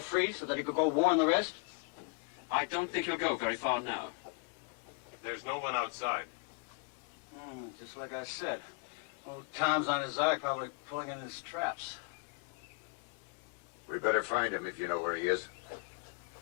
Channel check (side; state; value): right; quieter; 33.1 dB